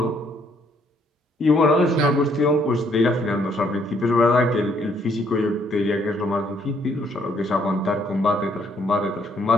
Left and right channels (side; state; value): both; normal; correlation 0.68